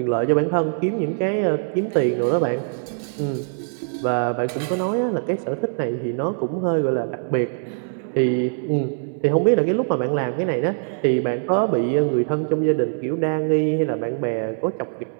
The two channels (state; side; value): silent; left; 64 dB below the other